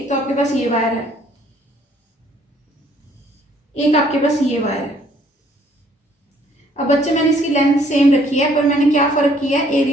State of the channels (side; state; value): both; normal; correlation 0.62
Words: तो आपके पास ये वायर है, एक आपके पास ये वायर है। अब बच्चे मैंने इसकी लेंथ सेम रखी है, पर मैंने क्या फर्क किया है,